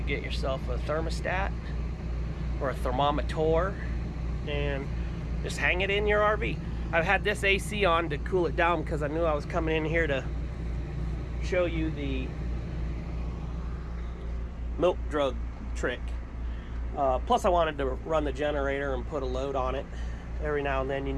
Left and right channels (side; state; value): both; identical; correlation 1.00